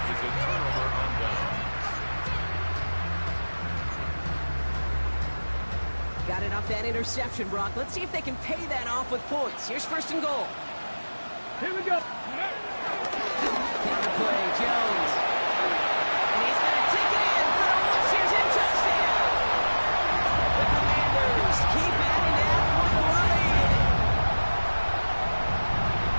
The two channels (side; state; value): both; inverted; correlation -1.00